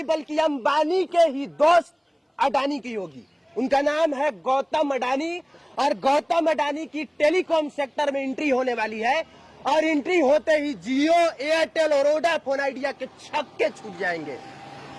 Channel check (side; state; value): both; identical; correlation 1.00